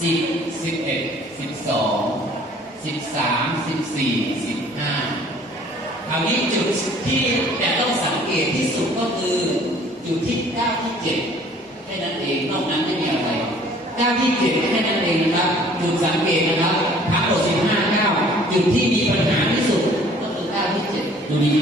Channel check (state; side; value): normal; both; correlation 0.54